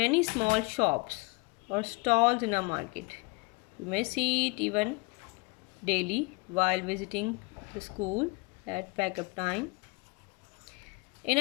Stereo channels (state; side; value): quieter; right; 27.2 dB